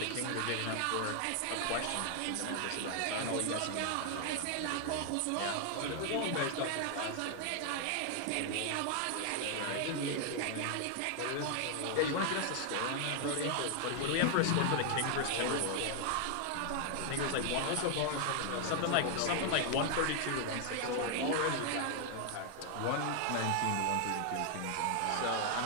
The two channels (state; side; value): different; both; correlation 0.00